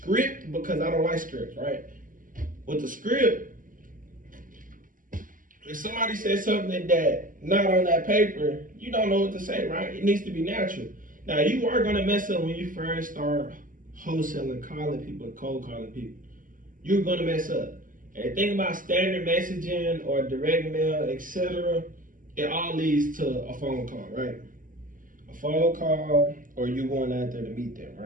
because I don't like scripts, right? With the script, if somebody says something that not on that paper, you don't know what to say, right? It needs to be natural. Now, you are gonna mess up when you first start wholesaling, calling people, cold calling people. You're gonna mess up. And the thing about standard messaging or direct mail, etc., it all leads to a phone call, right? A phone call, or you going out there to meet them,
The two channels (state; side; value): late; left; 0.39 ms